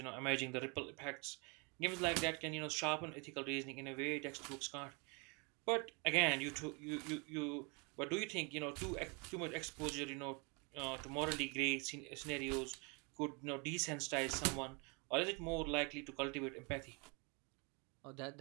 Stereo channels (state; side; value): quieter; left; 31.6 dB